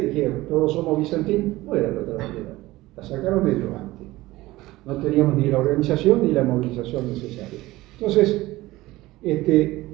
dijeron, todos somos Vicentín, no era la otra bandera. La sacaron ellos antes. No teníamos ni la organización ni la movilización necesaria. Entonces,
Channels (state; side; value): quieter; left; 18.4 dB